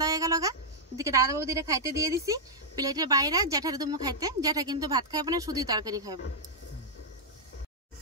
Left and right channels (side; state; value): both; normal; correlation -0.07